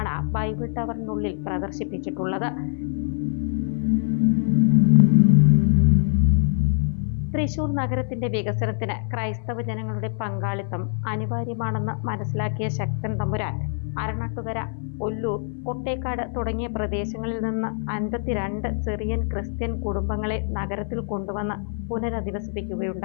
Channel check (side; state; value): right; silent; 59 dB below the other